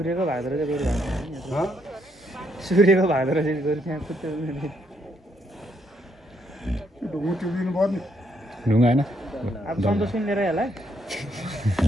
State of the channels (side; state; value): both; normal; correlation 0.74